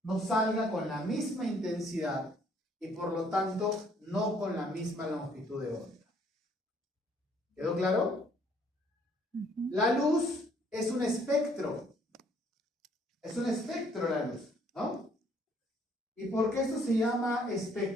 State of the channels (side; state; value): both; normal; correlation 0.64